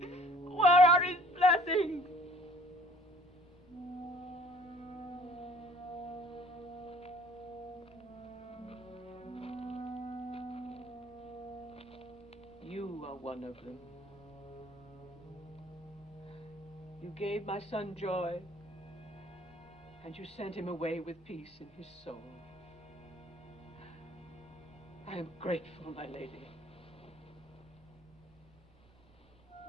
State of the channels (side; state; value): right; noise; rumble, 29 dB below the sound